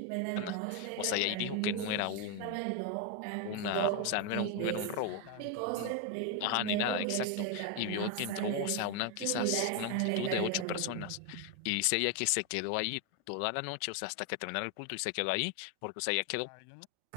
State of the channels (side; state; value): both; different; correlation 0.01